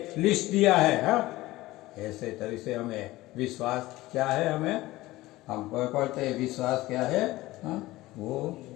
लिस्ट दिया है। हाँ, ऐसे तरह से हमें विश्वास क्या है, हम पढ़ते हैं विश्वास क्या है। हाँ, वो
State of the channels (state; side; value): quieter; right; 18.1 dB